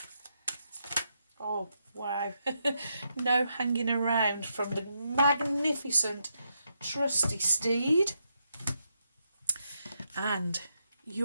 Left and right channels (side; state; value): both; inverted; correlation -0.81